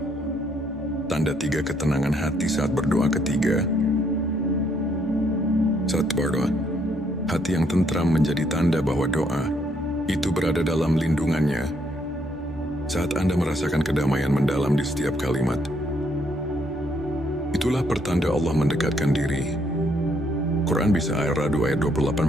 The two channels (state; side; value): normal; both; correlation 0.71